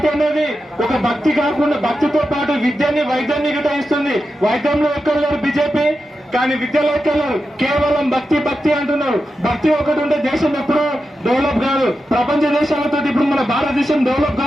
అనేది ఒక భక్తి కాకుండా భక్తితో పాటు విద్యని వైద్యాన్ని గిట్ట ఇస్తుంది. వైద్యంలో ఎక్కడలేరు బీజేపీ, కానీ విద్యలో ఎక్కడలేరు. కేవలం భక్తి భక్తి అంటున్నారు. భక్తి ఒకటి ఉంటే దేశం ఎప్పుడూ డెవలప్ కాదు. ప్రపంచ దేశాలతో ఇప్పుడు మన భారతదేశం డెవలప్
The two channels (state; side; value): normal; both; correlation 0.90